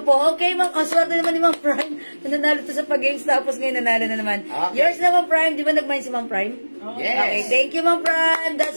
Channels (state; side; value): inverted; both; correlation -1.00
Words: Okay, Ma'am. Ang swerte naman ni Ma'am Prime. Nanalo to sa pag-games tapos ngayon nanalo na naman. Okay. Yours na, Ma'am Prime. Di ba nag-mine si Ma'am Prime? Yes. Okay, thank you, Ma'am Prime.